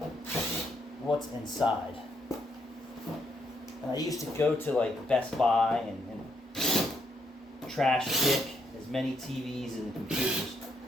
what's inside. And I used to go to like Best Buy and trash pick as many TVs and computers.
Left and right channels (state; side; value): normal; both; correlation 0.74